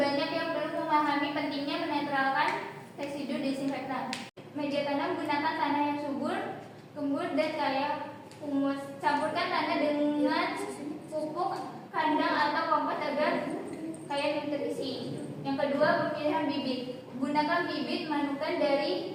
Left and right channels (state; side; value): identical; both; correlation 1.00